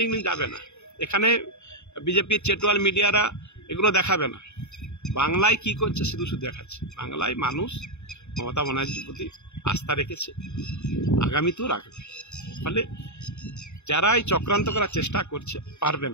যাবে না। এখানে বিজেপির চেটোয়াল মিডিয়ারা এগুলো দেখাবে না। বাংলায় কি করছে শুধু দেখাচ্ছে। বাংলায় মানুষ মমতা ব্যানার্জির প্রতি আস্থা রেখেছে, আগামীতেও রাখবে। ফলে যারা এই চক্রান্ত করার চেষ্টা করছে পারবে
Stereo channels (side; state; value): right; late; 0.82 ms